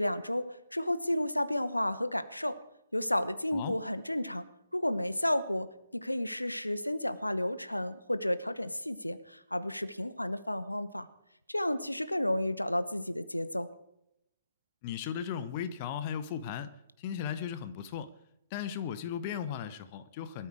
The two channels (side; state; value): both; inverted; correlation -0.89